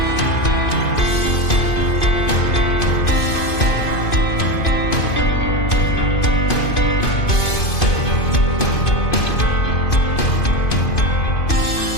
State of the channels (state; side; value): late; right; 2.5 ms